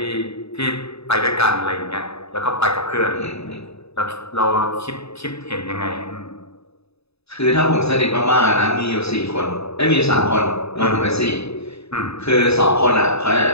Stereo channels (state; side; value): late; right; 0.79 ms